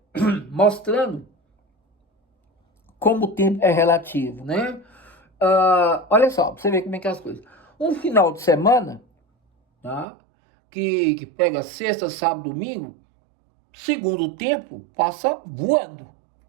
mostrando como o tempo é relativo, né? Olha só, pra você ver como é que é as coisas. Um final de semana, tá? Que pega sexta, sábado, domingo, segundo o tempo, passa voando.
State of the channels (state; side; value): drops out; left; at 10.1 s